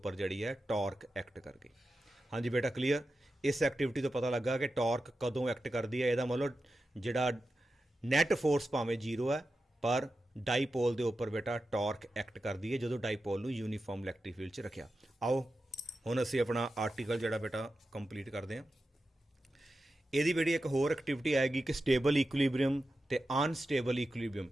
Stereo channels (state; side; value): normal; both; correlation 0.91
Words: ਜਿਹੜੀ ਹੈ ਟਾਰਕ ਐਕਟ ਕਰ ਗਈ। ਹਾਂਜੀ ਬੇਟਾ ਕਲੀਅਰ। ਇਸ ਐਕਟੀਵਿਟੀ ਤੋਂ ਪਤਾ ਲੱਗਾ ਕਿ ਟਾਰਕ ਕਦੋਂ ਐਕਟ ਕਰਦੀ ਹੈ। ਇਹਦਾ ਮਤਲਬ ਜਿਹੜਾ ਨੈਟ ਫੋਰਸ ਭਾਵੇਂ ਜ਼ੀਰੋ ਹੈ ਪਰ ਡਾਈਪੋਲ ਦੇ ਉੱਪਰ ਬੇਟਾ ਟਾਰਕ ਐਕਟ ਕਰਦੀ ਹੈ ਜਦੋਂ ਡਾਈਪੋਲ ਨੂੰ ਯੂਨੀਫਾਰਮ ਇਲੈਕਟ੍ਰਿਕ ਫੀਲਡ 'ਚ ਰੱਖਿਆ। ਆਓ ਹੁਣ ਅਸੀਂ ਆਪਣਾ ਆਰਟੀਕਲ ਜਿਹੜਾ ਬੇਟਾ ਕੰਪਲੀਟ ਕਰਦੇ ਹਾਂ। ਇਹਦੀ ਬੇਟੀ ਇੱਕ ਹੋਰ ਐਕਟੀਵਿਟੀ ਆਏਗੀ ਕਿ ਸਟੇਬਲ ਇਕੁਇਲੀਬ੍ਰੀਅਮ ਤੇ ਅਨਸਟੇਬਲ ਇਕੁਇਲੀਬ੍ਰੀਅਮ,